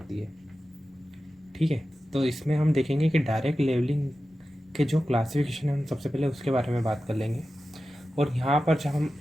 है। ठीक है, तो इसमें हम देखेंगे कि डायरेक्ट लेवलिंग के जो क्लासिफिकेशन है हम सबसे पहले उसके बारे में बात कर लेंगे। और यहाँ पर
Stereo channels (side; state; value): both; normal; correlation 0.93